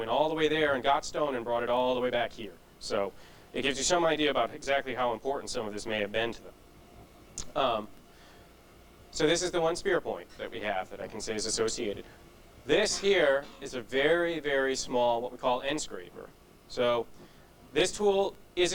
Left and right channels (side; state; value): both; identical; correlation 1.00